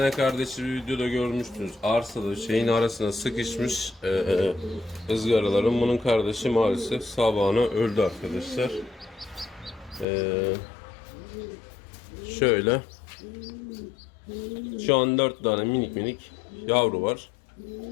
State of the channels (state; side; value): drops out; right; at 10.1 s